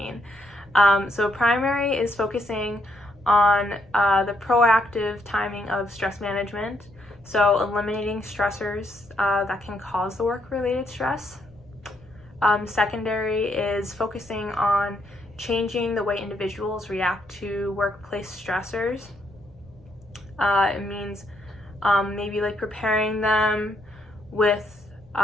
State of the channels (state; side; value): noise; left; rumble, 28 dB below the sound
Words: So primary is focusing on the proactive timing of stress management, so eliminating stressors that can cause the work-related stress. Secondary is focusing on changing the way individuals react to workplace stressors. It means maybe like preparing them with